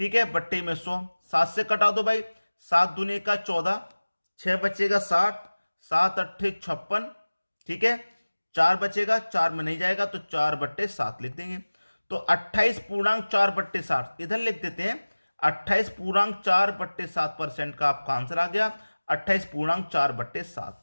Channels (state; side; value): inverted; both; correlation -1.00